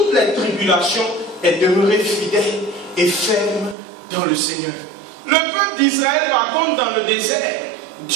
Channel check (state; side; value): drops out; left; at 3.8 s